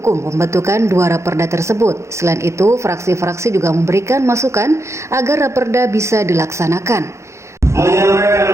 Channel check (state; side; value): late; left; 0.14 ms